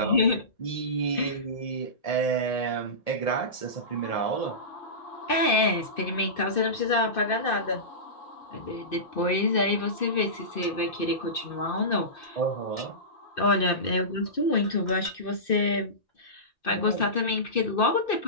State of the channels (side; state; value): right; late; 2.6 ms